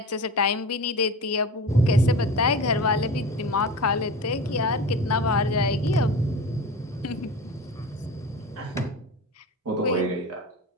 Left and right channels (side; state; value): both; normal; correlation 0.32